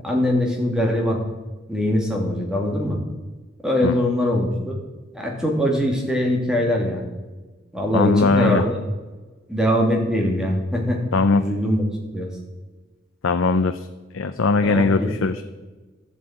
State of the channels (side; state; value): both; normal; correlation 0.60